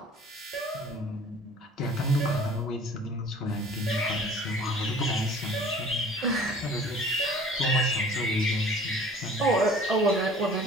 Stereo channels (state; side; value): normal; both; correlation 0.48